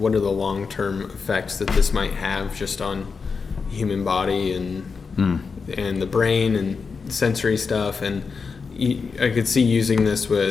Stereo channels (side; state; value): right; quieter; 5.1 dB